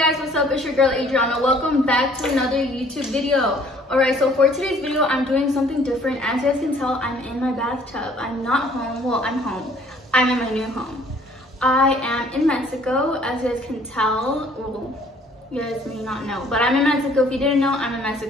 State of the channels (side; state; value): both; normal; correlation 0.58